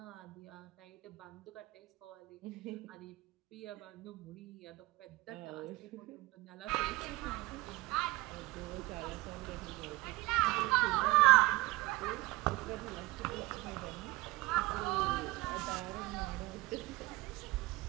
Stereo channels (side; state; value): left; quieter; 21.0 dB